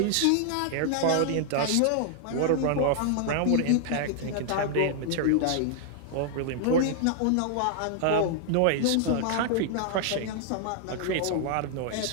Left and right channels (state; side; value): different; both; correlation 0.00